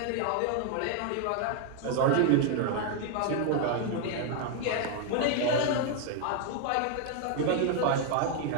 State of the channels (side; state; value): both; different; correlation 0.00